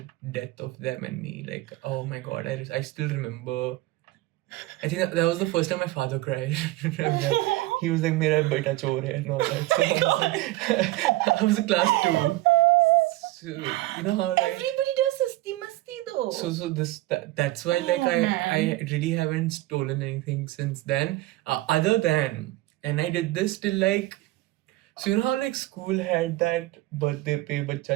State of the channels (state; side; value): quieter; left; 18.1 dB